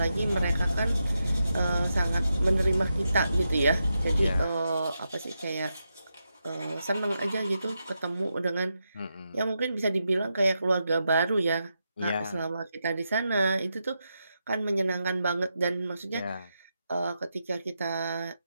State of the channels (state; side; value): inverted; both; correlation -0.86